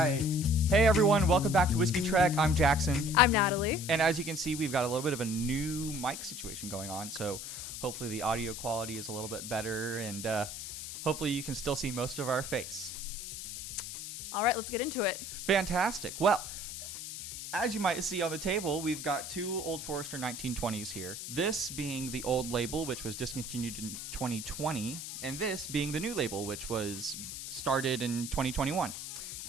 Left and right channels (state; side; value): noise; left; hiss, 8 dB below the sound